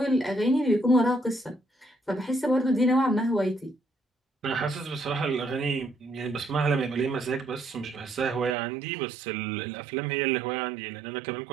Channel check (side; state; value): left; drops out; at 8.6 s